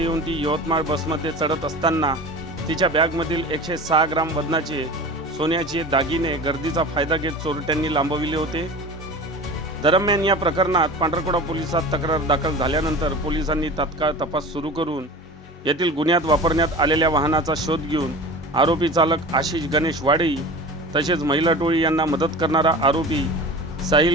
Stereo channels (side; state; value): both; normal; correlation 0.35